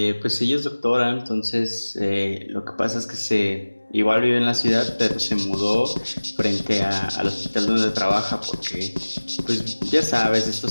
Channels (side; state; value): both; inverted; correlation -1.00